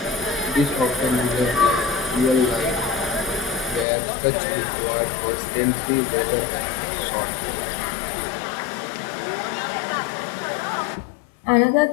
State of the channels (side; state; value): right; drops out; at 3.9 s